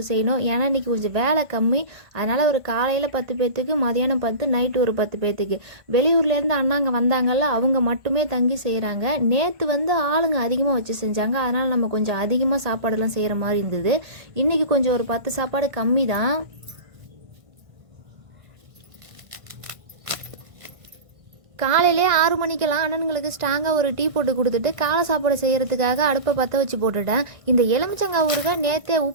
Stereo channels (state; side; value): late; left; 1.5 ms